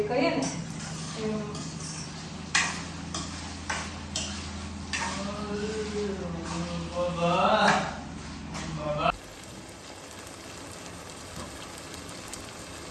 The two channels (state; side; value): identical; both; correlation 1.00